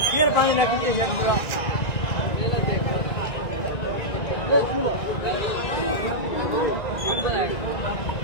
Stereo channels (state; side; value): late; right; 1.9 ms